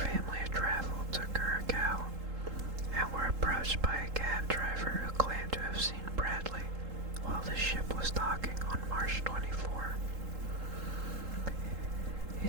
of travel to Curacao and were approached by a cab driver who claimed to have seen Bradley while the ship was docking on March 24. He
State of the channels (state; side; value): late; left; 3.8 ms